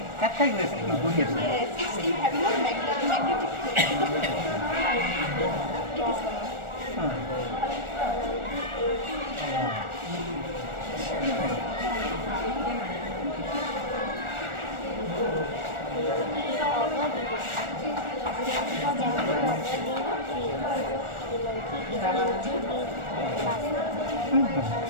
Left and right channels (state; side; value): late; left; 1.4 ms